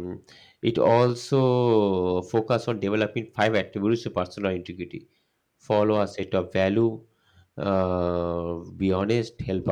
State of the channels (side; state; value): both; identical; correlation 1.00